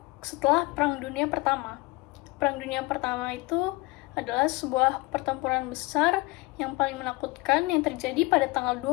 setelah Perang Dunia Pertama. Perang Dunia Pertama itu adalah sebuah pertempuran besar yang paling menakutkan yang terjadi pada tanggal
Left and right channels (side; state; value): right; quieter; 22.9 dB